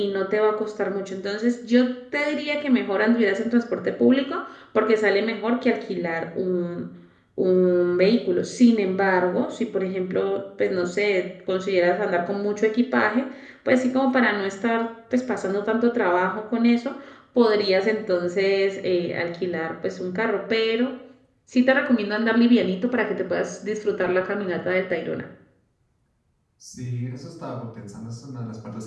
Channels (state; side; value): identical; both; correlation 1.00